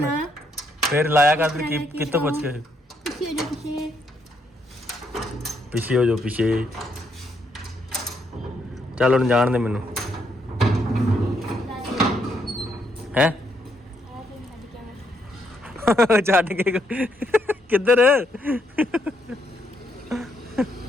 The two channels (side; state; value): both; normal; correlation 0.75